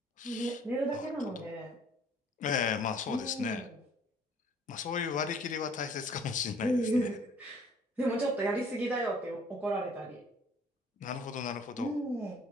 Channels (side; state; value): both; normal; correlation 0.55